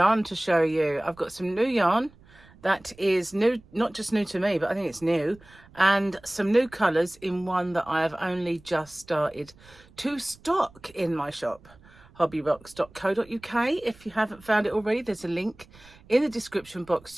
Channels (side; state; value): right; noise; rumble, 25 dB below the sound